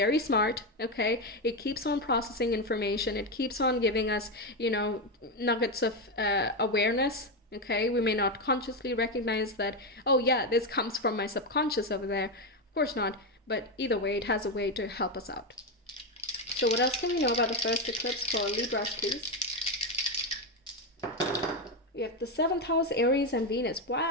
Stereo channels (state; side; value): normal; both; correlation 0.10